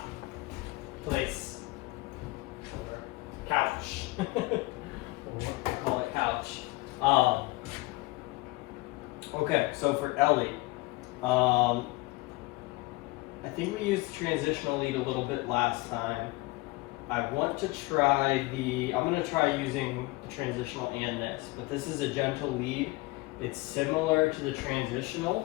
Place. Couch. Call it couch. Okay, so for Ellie, I think we used the transitional lead a little bit last time. I want to try I'm going to try using the transitional and this, but this is a gentle lead. It's similar to the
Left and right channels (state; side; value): quieter; right; 22.1 dB